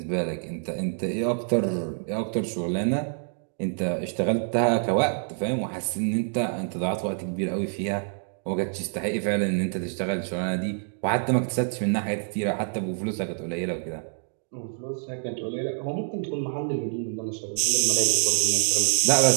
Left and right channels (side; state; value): left; silent; digital silence